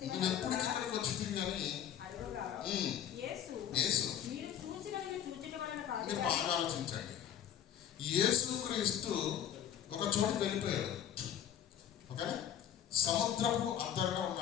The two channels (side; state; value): right; quieter; 9.8 dB